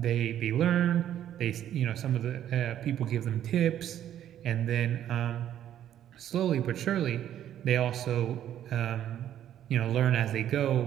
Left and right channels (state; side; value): quieter; left; 11.0 dB